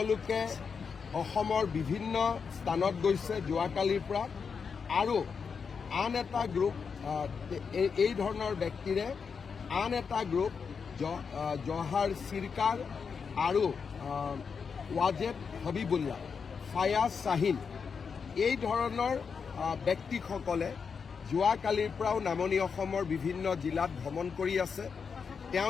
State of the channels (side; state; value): right; quieter; 5.9 dB